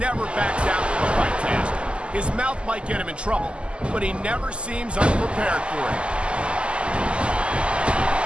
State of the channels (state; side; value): late; left; 0.052 ms